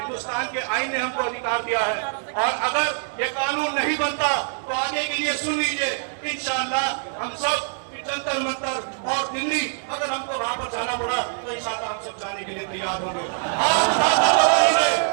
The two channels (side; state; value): left; silent; digital silence